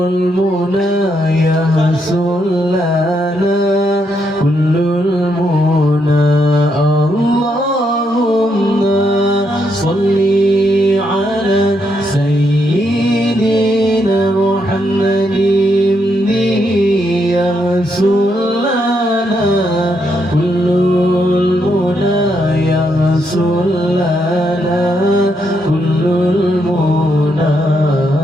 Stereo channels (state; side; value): normal; both; correlation 0.78